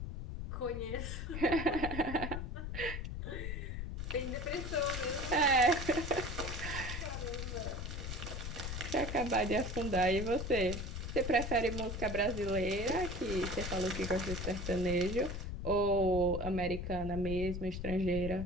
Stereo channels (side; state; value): left; noise; rumble, 5 dB below the sound